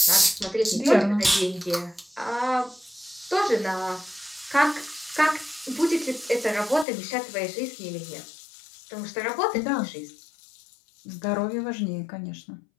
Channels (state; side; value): drops out; right; at 6.9 s